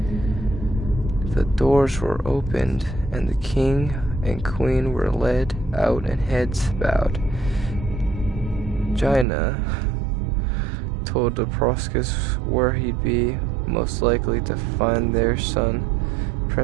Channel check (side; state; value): left; drops out; at 9.2 s